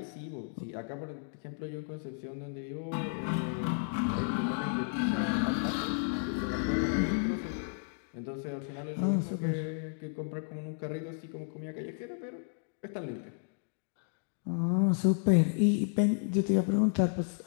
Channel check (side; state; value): right; silent; digital silence